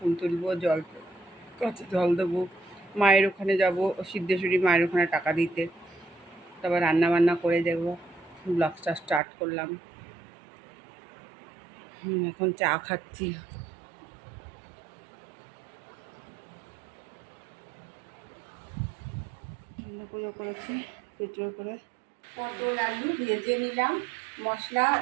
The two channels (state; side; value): drops out; left; at 9.2 s